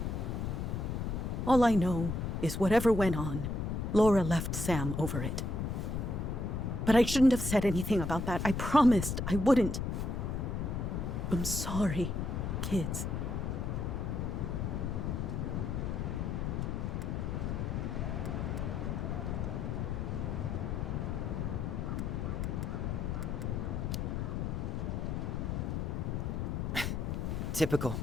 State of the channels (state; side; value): noise; left; rumble, 1 dB below the sound